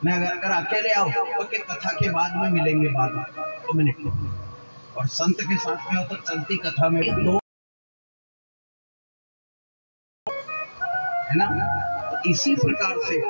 मैं अगर अकेले आओ तो कि कथा के बाद में मिलेंगे, बाद में 2 मिनट, और संत के साथ में हो तो चलती कथा में दो, है ना। तो इसी प्रकार से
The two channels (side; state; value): both; inverted; correlation -1.00